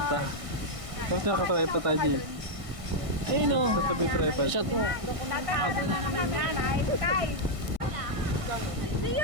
Tapos nakatripod tayo, Jay. Ayun o. Sa tabi tripod. Shot mo. Tatawag na naman yan, ay, kay.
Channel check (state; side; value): late; left; 1.6 ms